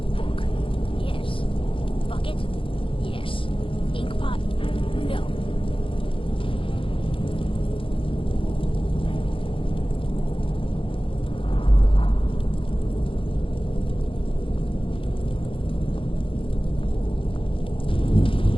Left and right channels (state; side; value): late; right; 0.25 ms